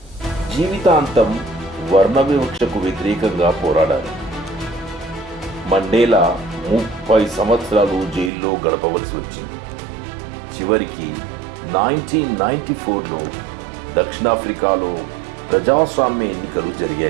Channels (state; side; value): drops out; left; at 8.3 s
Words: జీవితాంతం వర్ణ వివక్షకు వ్యతిరేకంగా పోరాడారు. మండేలా 30 సంవత్సరాలు జైల్లో గడపవలసి వచ్చింది. చివరికి 1994లో దక్షిణాఫ్రికాలో ప్రజాస్వామ్య ఎన్నికలు